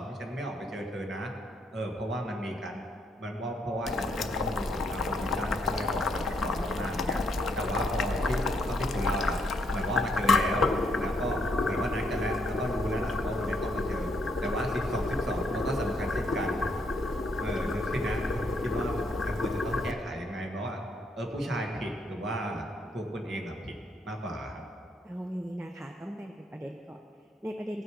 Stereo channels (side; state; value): both; normal; correlation 0.74